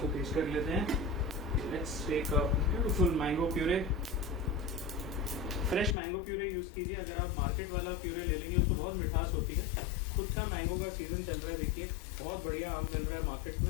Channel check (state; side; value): drops out; right; at 6.0 s